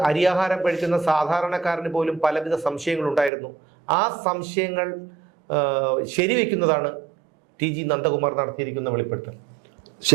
അരിയാഹാരം കഴിക്കുന്ന സാധാരണക്കാരന് പോലും പലവിധ സംശയങ്ങളുണ്ടായിരുന്നു. ആ സംശയങ്ങൾ ശരിവെക്കുന്നതാണ് TG നന്ദകുമാർ നടത്തിയിരിക്കുന്ന വെളിപ്പെടുത്തൽ.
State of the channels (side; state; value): left; drops out; at 3.3 s